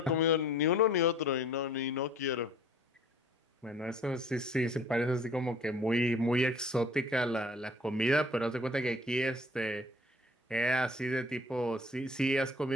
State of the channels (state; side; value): normal; both; correlation 0.52